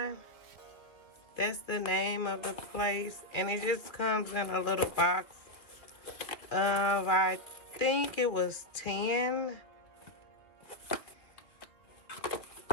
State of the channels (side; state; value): right; late; 1.9 ms